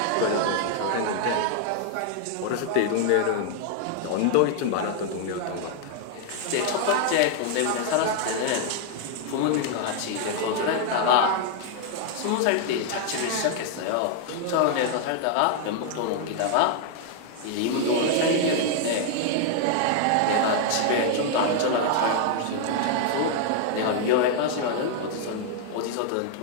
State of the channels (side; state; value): both; different; correlation 0.00